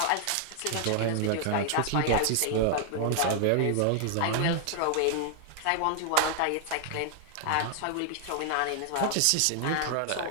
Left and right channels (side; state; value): both; different; correlation 0.00